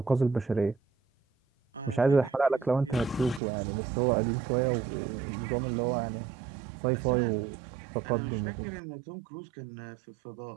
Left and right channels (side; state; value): left; drops out; at 3.4 s